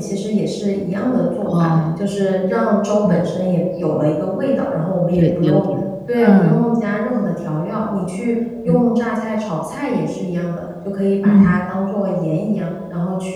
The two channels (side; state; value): both; identical; correlation 1.00